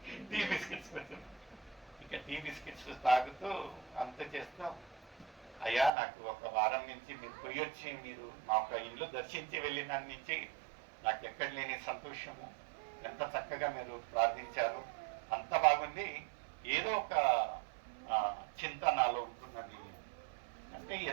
టీ బిస్కెట్స్ వచ్చింది. ఇక టీ బిస్కెట్స్ తాగుతూ అంత చేస్తూ, అయ్యా నాకు ఒక వారం నుంచి మీరు పోయి వచ్చి మీరు మా యొక్క ఇల్లు దర్శించి వెళ్ళిన నుంచి నాకు ఎక్కడ లేని సంతోషము, ఎంత చక్కగా మీరు ప్రార్థించారు, అంత బాగుంది. ఏదో ఒక చింత నాలో ఉంటున్నది అంటే,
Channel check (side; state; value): left; drops out; at 5.9 s